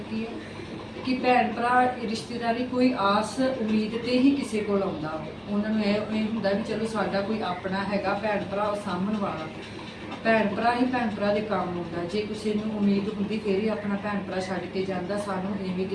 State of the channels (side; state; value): both; identical; correlation 1.00